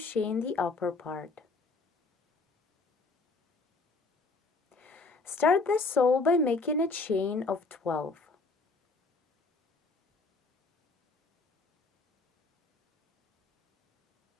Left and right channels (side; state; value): right; quieter; 3.8 dB